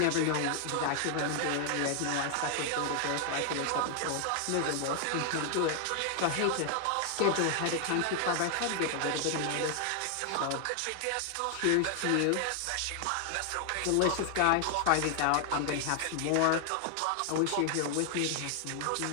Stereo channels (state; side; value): different; both; correlation 0.00